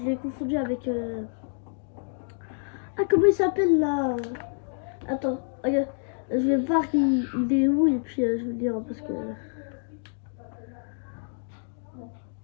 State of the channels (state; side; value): silent; right; 60 dB below the other